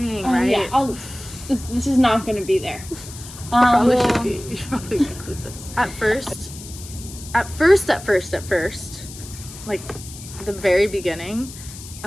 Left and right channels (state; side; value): noise; left; hiss, 15 dB below the sound